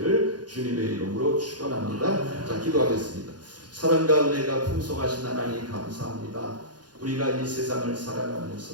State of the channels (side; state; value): left; late; 0.69 ms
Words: 주님의 이름으로 축원합니다. 자, 기도하겠습니다. 사랑과 은혜가 풍성하신 하나님 감사합니다. 우리가 이 세상을